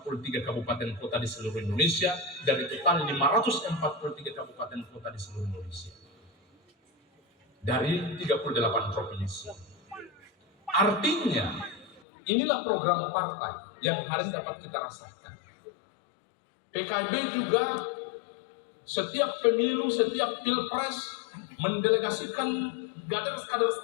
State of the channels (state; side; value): drops out; right; at 12.0 s